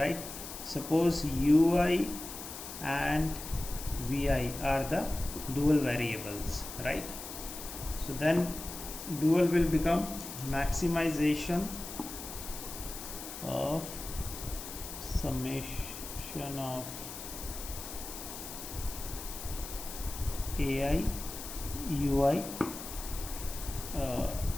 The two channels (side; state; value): left; noise; hiss, 10 dB below the sound